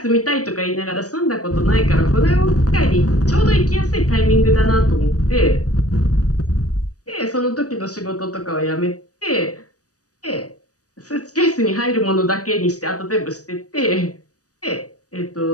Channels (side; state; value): right; late; 0.67 ms